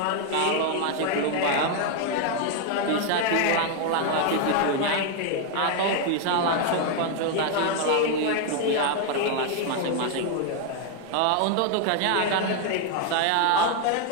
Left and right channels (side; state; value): both; different; correlation 0.00